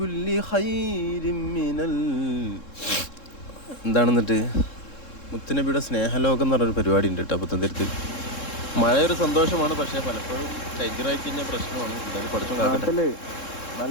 خير من എന്താണെന്നിട്ട് മുത്തുനബിയുടെ സ്നേഹലോകം എന്ന് പറഞ്ഞൊരു പരിപാടി ഉണ്ട് കേട്ടോ പുത്തൻതിരുത്ത്. മഴയൊരു സന്തോഷമാണ്, പക്ഷേ പലപ്പോഴും ചൈഗ്രമായി കഴിഞ്ഞാൽ പ്രശ്നമാണ്. എന്തായാലും പഠിച്ചു നാട്ടില്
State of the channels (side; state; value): right; late; 3.7 ms